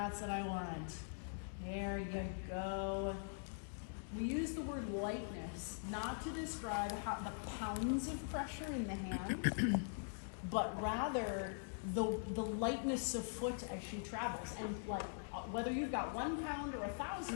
what I want. There you go. We use the word lightness not to describe how the pounds of pressure in the hand, but rather the lightness of foot as she travels. And like whether you've got 1 pound or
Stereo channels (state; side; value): silent; right; digital silence